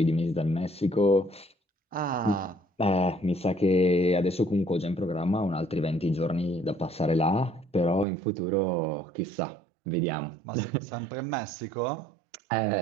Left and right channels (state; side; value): drops out; left; at 8.1 s